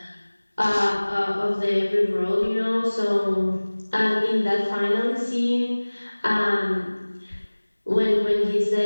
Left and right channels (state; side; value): inverted; both; correlation -1.00